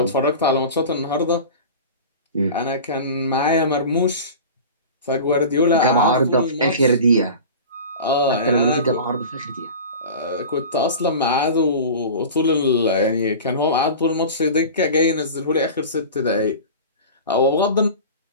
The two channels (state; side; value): inverted; both; correlation -0.35